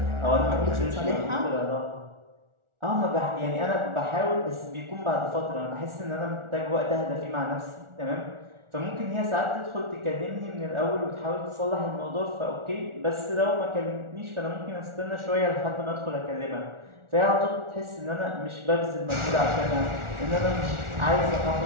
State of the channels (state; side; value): late; left; 1.4 ms